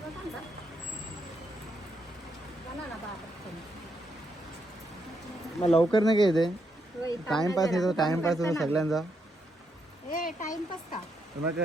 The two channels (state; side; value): normal; both; correlation 0.78